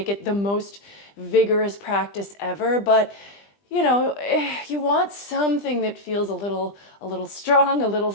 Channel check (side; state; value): right; late; 20 ms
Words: it the most vigorous practice ever, but you want something that feels a little strong, a little